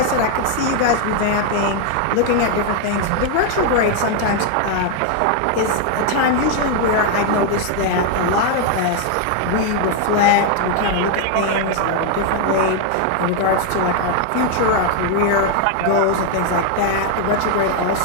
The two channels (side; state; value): both; different; correlation 0.00